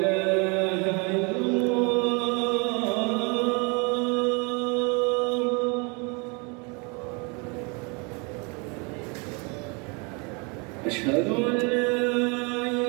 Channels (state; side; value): quieter; left; 31.8 dB